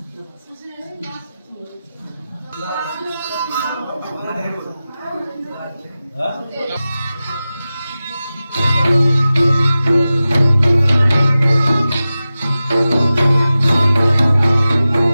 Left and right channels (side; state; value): both; inverted; correlation -0.95